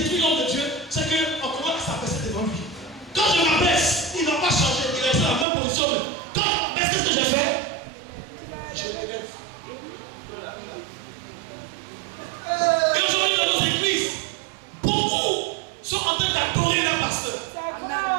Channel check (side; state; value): left; drops out; at 5.5 s